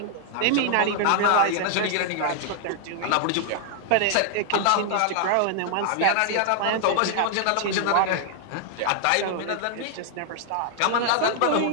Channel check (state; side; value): different; both; correlation 0.00